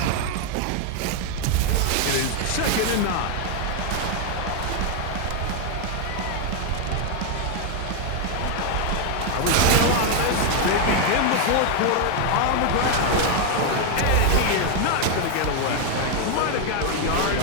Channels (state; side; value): different; both; correlation 0.01